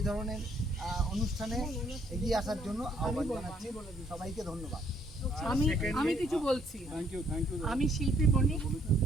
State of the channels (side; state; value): both; normal; correlation 0.66